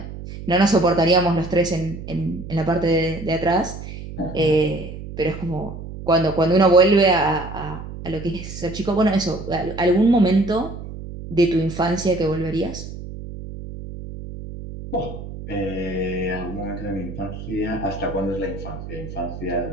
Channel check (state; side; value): noise; right; hum, 11 dB below the sound